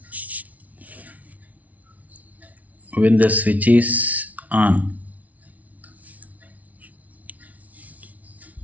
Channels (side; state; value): left; late; 0.071 ms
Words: When the switch is on,